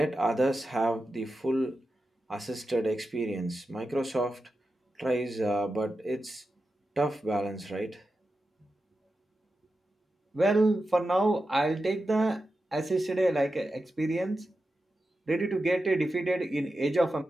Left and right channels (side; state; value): both; normal; correlation 0.91